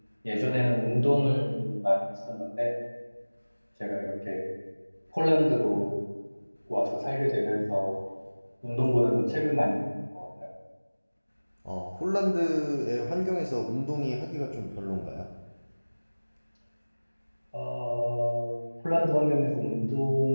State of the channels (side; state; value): both; inverted; correlation -1.00